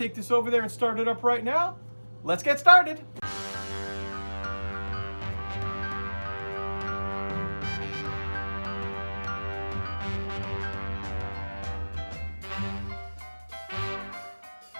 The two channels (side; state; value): both; inverted; correlation -1.00